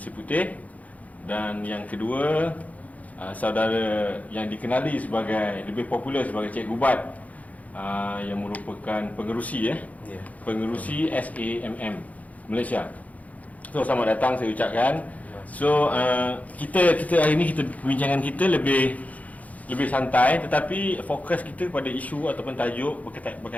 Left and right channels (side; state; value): right; late; 0.072 ms